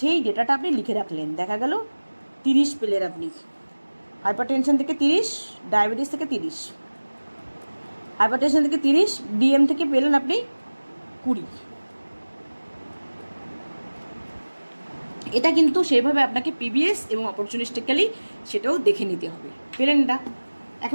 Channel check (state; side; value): inverted; both; correlation -1.00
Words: ডেটাটা আপনি লিখে রাখলেন। দেখা গেল 30 পেলেন আপনি, হাইপারটেনশন থেকে 30, ডায়াবেটিস থেকে 30, হাইপারটেনশন থেকে 30, ডিএম থেকে পেলেন আপনি 20। এটা কিন্তু সেভাবে আপনাকে পিবিএস এবং অপরচুনিস্টিক্যালি সেটাও দেখে নিতে হবে। পেলেন এটা?